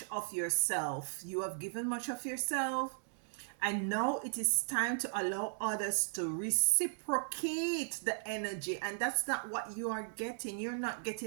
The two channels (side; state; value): left; silent; digital silence